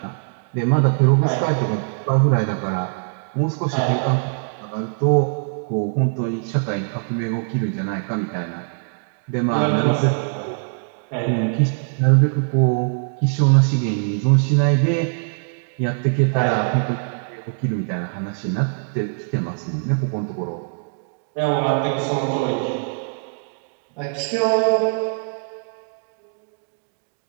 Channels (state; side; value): silent; left; digital silence